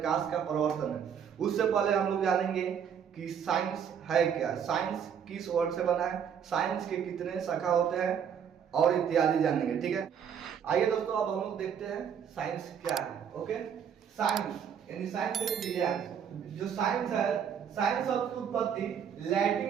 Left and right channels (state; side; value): quieter; left; 8.0 dB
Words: का प्रवर्तन है। उससे पहले हम लोग जानेंगे कि साइंस है क्या, साइंस किस वर्ड से बना है, साइंस के कितने शाखा होते हैं और इत्यादि जानेंगे। ठीक है, आइए दोस्तों, अब हम लोग देखते हैं साइंस क्या है। ओके, साइंस यानी साइंस विज्ञान। जो साइंस है, साइंस शब्द की उत्पत्ति